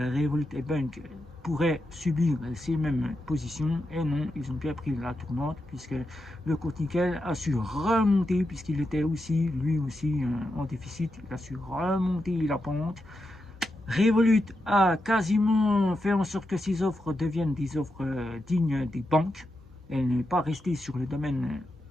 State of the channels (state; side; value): normal; both; correlation 0.86